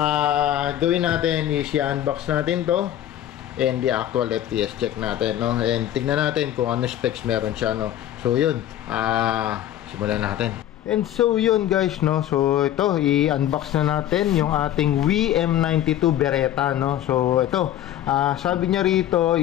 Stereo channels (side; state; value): right; quieter; 12.0 dB